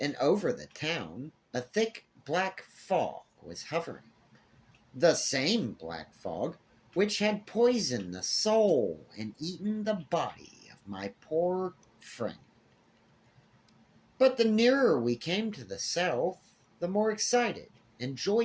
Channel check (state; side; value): identical; both; correlation 1.00